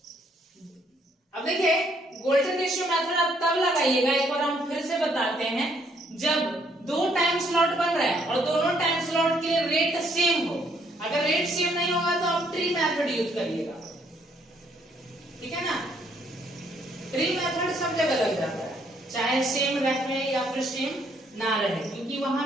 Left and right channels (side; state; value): both; normal; correlation 0.68